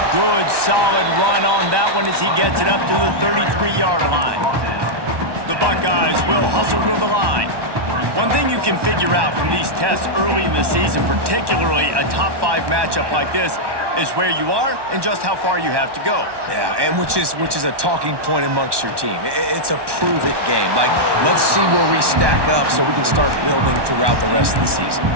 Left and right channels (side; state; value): left; late; 1.1 ms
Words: Good, solid run on that one as he gets it up to the 33-yard line. The Buckeyes will hustle to the line. One thing you can figure out from these tests early in the season, particularly a top 5 matchup like this, is where you are and just how far you have to go. Yeah, and which is a talking point amongst your team. It's a prove-it game. Like, let's see where we stack up so we can start building throughout the rest of the season.